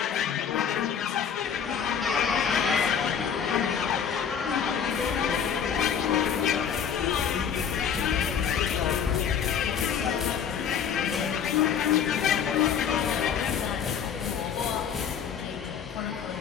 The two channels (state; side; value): quieter; right; 7.7 dB